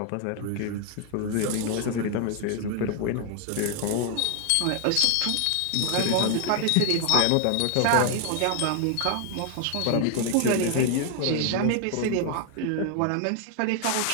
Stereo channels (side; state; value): both; different; correlation 0.00